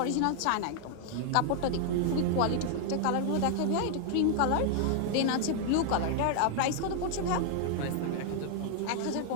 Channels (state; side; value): different; both; correlation 0.00